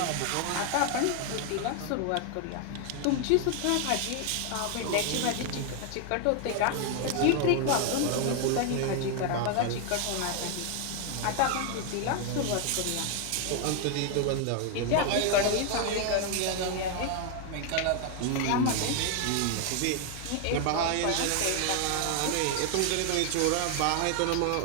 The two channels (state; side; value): different; both; correlation 0.00